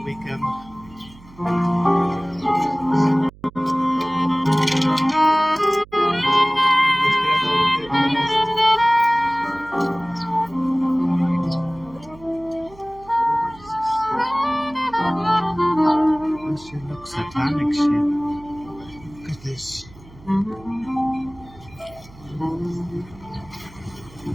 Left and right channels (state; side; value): noise; right; hum, 22 dB below the sound